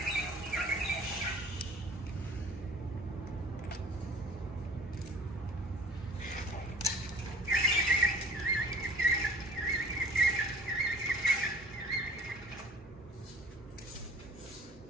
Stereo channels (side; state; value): both; normal; correlation 0.47